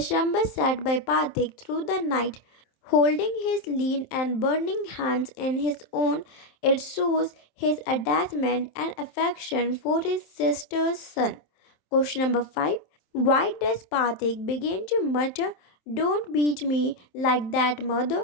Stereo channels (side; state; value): right; late; 27 ms